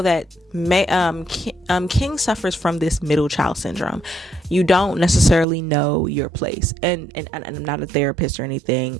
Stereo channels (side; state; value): left; drops out; at 5.5 s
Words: that King suffers from this middle child syndrome. You don't necessarily know your place. And I'm not a therapist or anything.